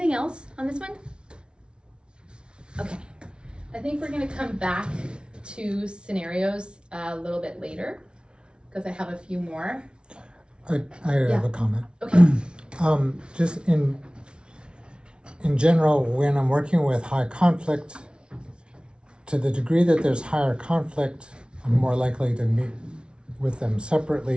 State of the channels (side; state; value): left; late; 0.057 ms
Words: else on this one? Okay. I think we're gonna come back to scenarios a little bit later because I have a few more. I have a comment. Okay. Just in general, when I'm working with high conflict, to the degree that there's higher conflict, I'm more likely to meet with them